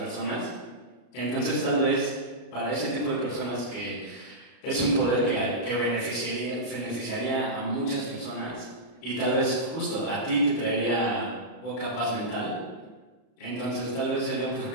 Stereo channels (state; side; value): late; right; 33 ms